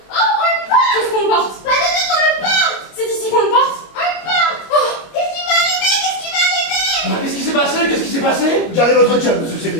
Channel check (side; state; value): right; late; 25 ms